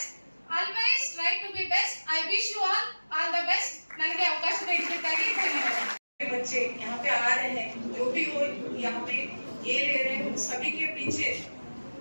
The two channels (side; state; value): both; inverted; correlation -1.00